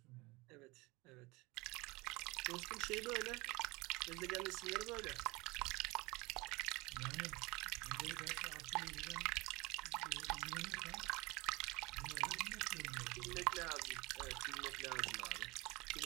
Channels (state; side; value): quieter; left; 23.7 dB